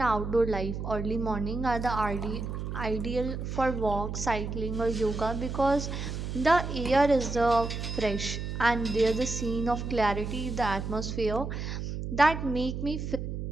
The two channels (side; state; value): right; noise; hum, 5 dB below the sound